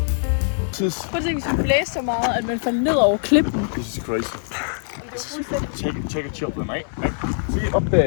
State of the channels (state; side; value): silent; right; 64 dB below the other